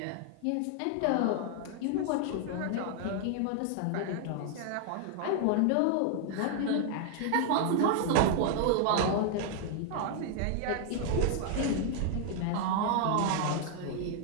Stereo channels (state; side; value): different; both; correlation 0.00